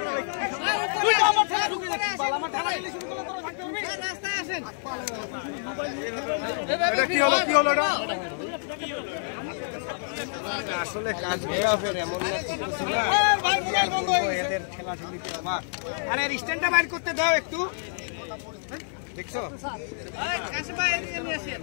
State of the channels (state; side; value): silent; right; digital silence